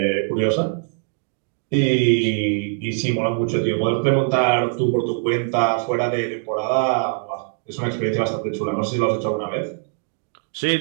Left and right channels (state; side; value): silent; left; digital silence